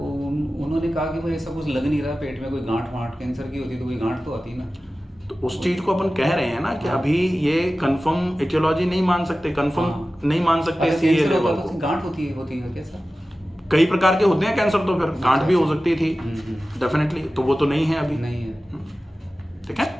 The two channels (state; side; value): normal; both; correlation 0.95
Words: कहा कि भाई ऐसा कुछ लग नहीं रहा पेट में, कोई गांठ वांठ कैंसर की होती तो कोई गांठ तो आती ना। तो उस चीज को अपन कह रहे हैं ना कि अभी ये कंफर्म एटियोलॉजी नहीं मान सकते, कंफर्म नहीं मान सकते अगर CA कैंसर लेवल होता को। तो गांठ होती है क्या सर? कई प्रकार के होते हैं कैंसर, तो फिर गांठ भी हो सकती थी डेफिनेटली, तो वो तो नहीं है अभी। नहीं है। ठीक